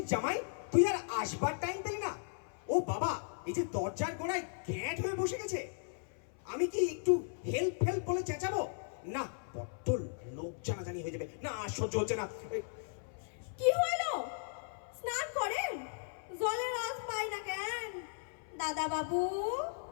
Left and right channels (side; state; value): right; silent; 53 dB below the other